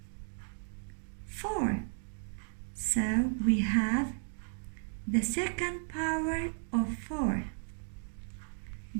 4. So we have the second power of 4.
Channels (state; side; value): silent; left; digital silence